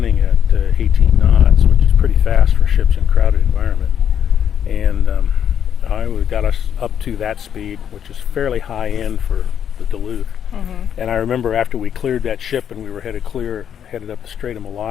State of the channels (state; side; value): quieter; right; 8.9 dB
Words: at 18 knots, which is pretty fast for ships in a crowded environment. And I got us up to that speed, which is fairly high end for the Duluth. And I remember after we cleared that ship and we were headed up the Strait of